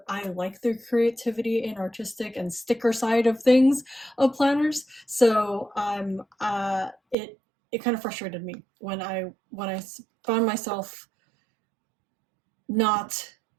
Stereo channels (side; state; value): left; drops out; at 7.2 s